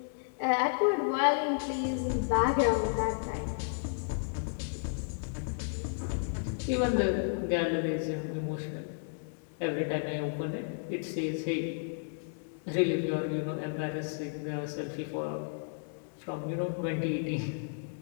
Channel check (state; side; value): silent; right; digital silence